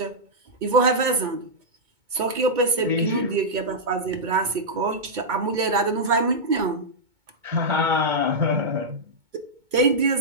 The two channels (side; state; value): left; late; 2.2 ms